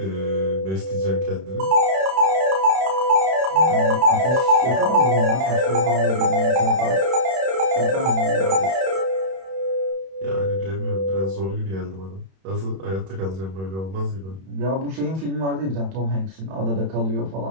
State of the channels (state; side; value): late; left; 31 ms